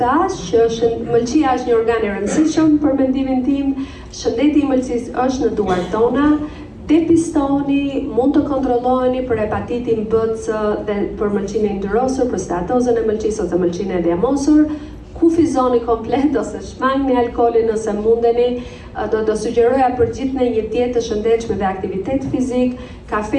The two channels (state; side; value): identical; both; correlation 1.00